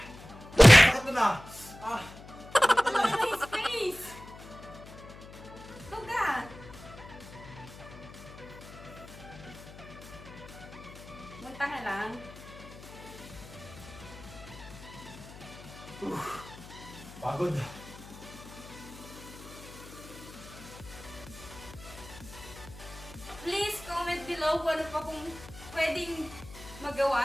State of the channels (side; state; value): left; noise; hum, 16 dB below the sound